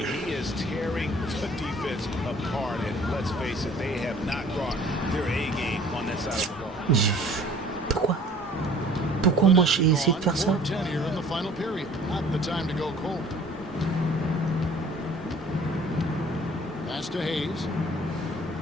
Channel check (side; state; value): both; normal; correlation 0.51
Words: he is tearing the defense apart, and let's face it, they have not brought their A game on that side of the ball. Pourquoi? Pourquoi moi j'ai essayé de faire ça? Pass to Hayes.